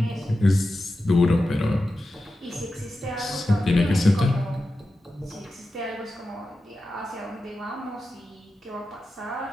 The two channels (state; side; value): normal; both; correlation 0.92